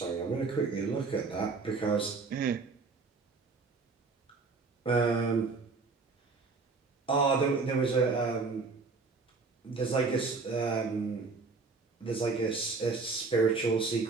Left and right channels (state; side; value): quieter; left; 4.2 dB